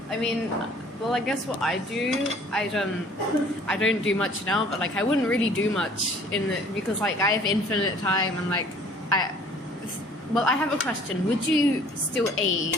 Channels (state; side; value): normal; both; correlation 0.53